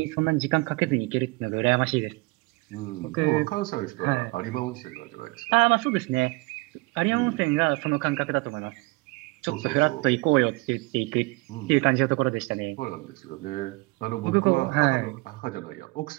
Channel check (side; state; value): left; quieter; 24.7 dB